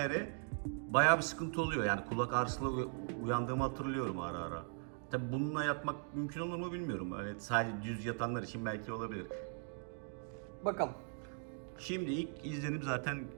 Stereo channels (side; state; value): left; silent; 52 dB below the other